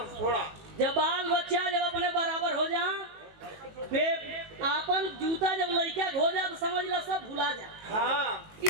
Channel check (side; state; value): left; late; 18 ms